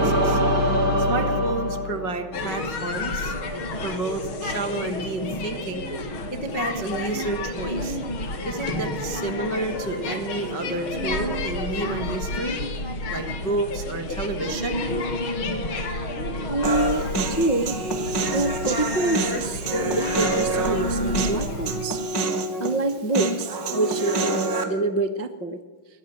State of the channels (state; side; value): late; right; 5.5 ms